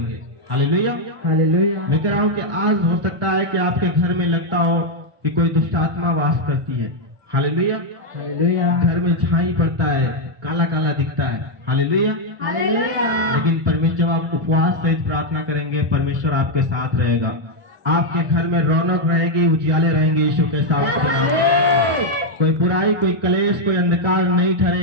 हालेलुया, हालेलुया, मैं कह रहा हूँ कि आज हो सकता है कि आपके घर में लगता हो कि कोई दुष्ट आत्मा वास करती है। हालेलुया, हालेलुया, घर में छाई पड़ता है, काला काला दिखता है। हालेलुया। लेकिन परमेश्वर, जब आप उपवास सहित प्रार्थना करेंगे, परमेश्वर आपके साथ रहेगा, आपके घर में रौनक रहेगी, उजियाले रहेंगे यीशु के साथ। कोई बुराई, कोई कलेश, कोई अंधकार नहीं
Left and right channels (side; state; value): left; late; 1.4 ms